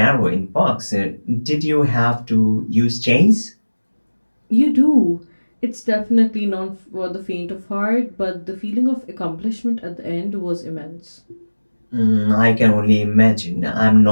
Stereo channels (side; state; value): both; inverted; correlation -1.00